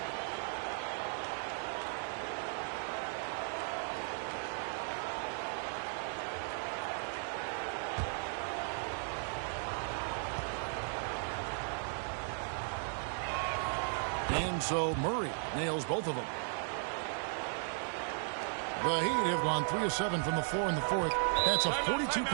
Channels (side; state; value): left; silent; 54 dB below the other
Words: And so Murray nails both of them. The Heat have gone 3 of 7 from the floor in the fourth. That's a